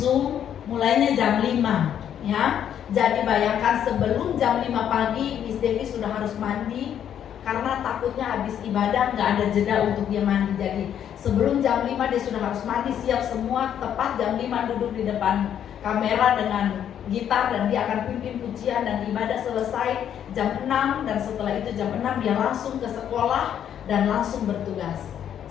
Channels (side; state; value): right; quieter; 9.6 dB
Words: mulainya jam 5. Ya, jadi bayangkan sebelum jam 5 pagi Miss Devi sudah harus mandi, karena takutnya habis ibadah nggak ada jeda untuk dia mandi. Jadi sebelum jam 5 dia sudah harus mandi, siap semua. Tepat jam 5 duduk di depan kamera dengan gitar, dan dia akan pimpin pujian dan ibadah selesai jam 6. Dan setelah itu jam 6 dia langsung ke sekolah dan langsung bertugas.